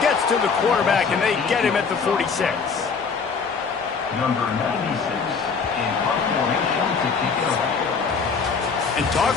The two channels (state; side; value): quieter; right; 5.4 dB